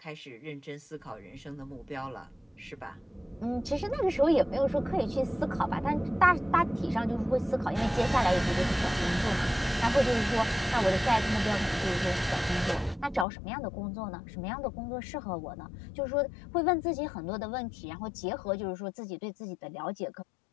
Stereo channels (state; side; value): drops out; right; at 13.2 s